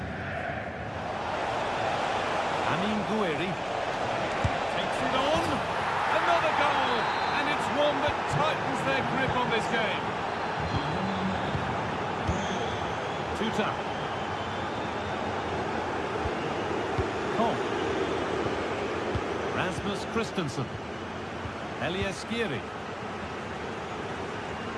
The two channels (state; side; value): identical; both; correlation 1.00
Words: Amin Gouiri takes it on, another goal, and it's one that tightens their grip on this game. Tuta. Koch. Rasmus Christensen. Elias Skiri.